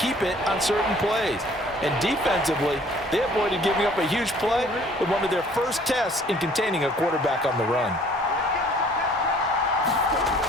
it on certain plays. And defensively, they avoided giving up a huge play with one of their first tests in containing a quarterback on the run.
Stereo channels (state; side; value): normal; both; correlation 0.55